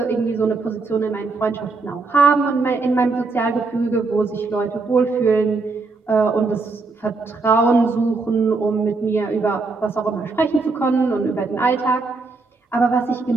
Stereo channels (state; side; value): quieter; left; 3.9 dB